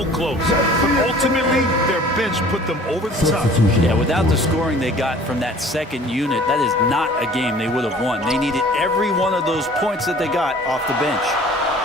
close, but ultimately their bench put them over the top. Yeah, without the scoring they got from that second unit, that is not a game they would have won. They needed every one of those points that they got off the bench.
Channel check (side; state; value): both; normal; correlation 0.49